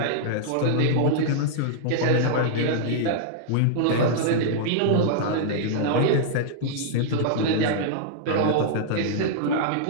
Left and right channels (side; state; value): both; different; correlation -0.01